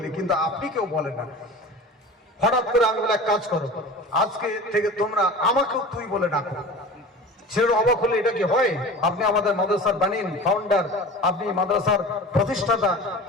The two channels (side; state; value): both; normal; correlation 0.36